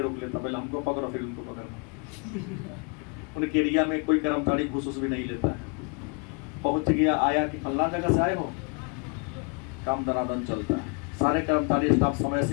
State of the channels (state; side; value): quieter; right; 34.6 dB